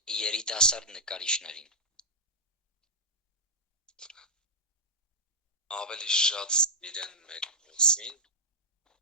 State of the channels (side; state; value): both; normal; correlation -0.09